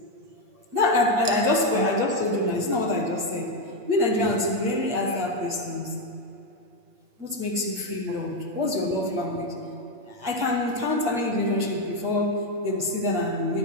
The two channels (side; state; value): left; late; 8.5 ms